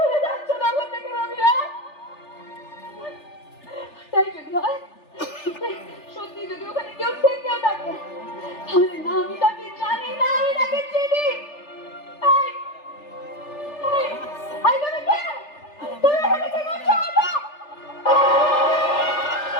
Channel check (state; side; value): late; right; 3.4 ms